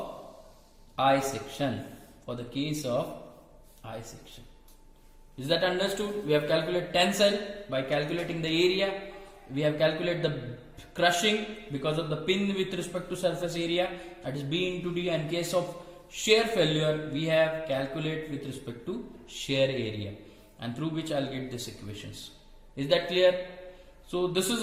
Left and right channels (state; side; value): identical; both; correlation 1.00